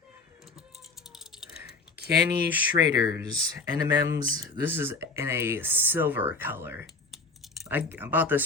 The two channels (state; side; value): quieter; right; 3.7 dB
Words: Kenny Schrader's NMM's. This is in a silver color. I bought this